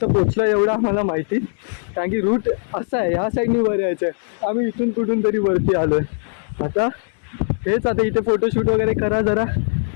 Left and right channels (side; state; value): right; silent; 58 dB below the other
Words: पोचलो एवढं आम्हाला माहिती. कारण की रूट असा आहे, ह्या साईडनी वर यायचं आहे. आम्ही इथून कुठून तरी वरती आलो आहे. आता हेच आता इथे फोटोशूट वगैरे करा,